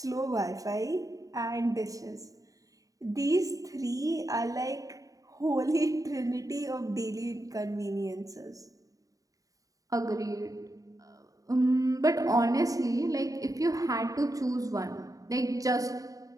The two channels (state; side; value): late; left; 0.17 ms